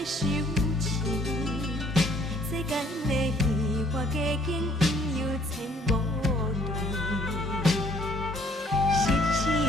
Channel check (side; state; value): both; normal; correlation 0.62